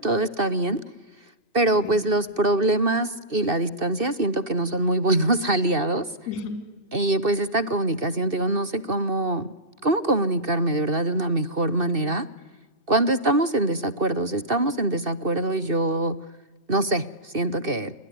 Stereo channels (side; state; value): left; late; 2.6 ms